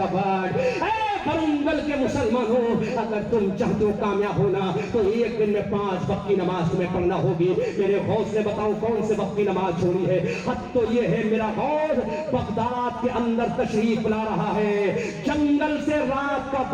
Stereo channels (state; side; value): identical; both; correlation 1.00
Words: world۔ برنگل کے مسلمانوں اگر تم چاہتے ہو کامیاب ہونا تو ایک دن میں 5 وقت کی نماز تمہیں پڑھنا ہوگی۔ میرے غوث نے بتاؤ کون سے وقت کی نماز چھوڑی ہے؟ حد تو یہ ہے میرا غوث بغداد کے اندر تشریف لا رہا ہے، جنگل سے رات کا